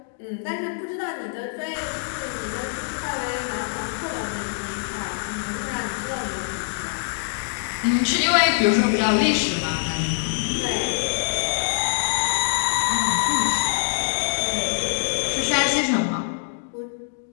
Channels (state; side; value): silent; right; digital silence